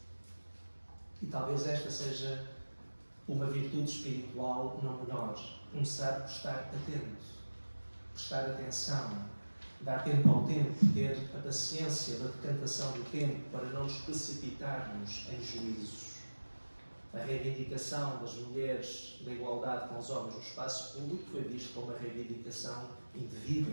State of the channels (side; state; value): both; inverted; correlation -1.00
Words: E talvez esta seja uma virtude espiritual não menor. Começar por estar atento, prestar atenção, dar tempo ao tempo, ter a paciência da decantação do tempo para não nos precipitarmos em juízos. A reivindicação das mulheres da igualdade com os homens no espaço público foi vista como uma reivindicação